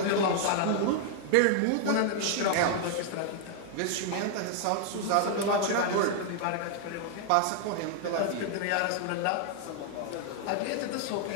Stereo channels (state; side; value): different; both; correlation 0.00